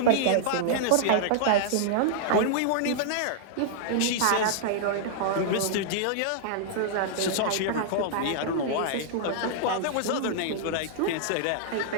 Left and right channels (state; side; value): different; both; correlation -0.01